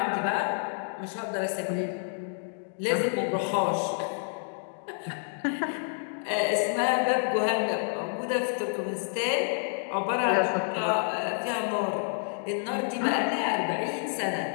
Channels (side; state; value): right; silent; 59 dB below the other